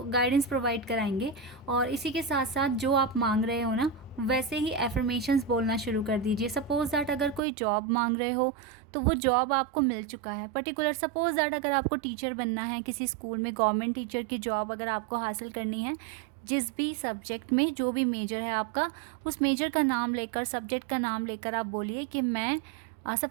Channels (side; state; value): left; drops out; at 7.4 s